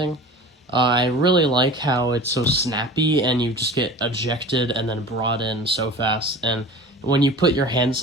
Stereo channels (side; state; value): both; normal; correlation 0.38